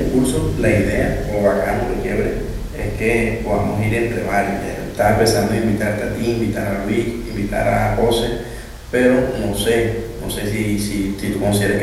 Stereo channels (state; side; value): identical; both; correlation 1.00